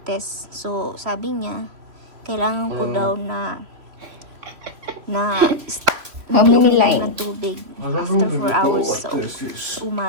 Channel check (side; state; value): left; late; 3.0 ms